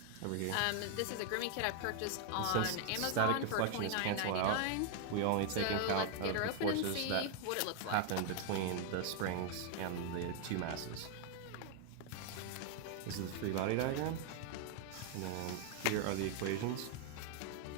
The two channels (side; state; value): both; different; correlation 0.00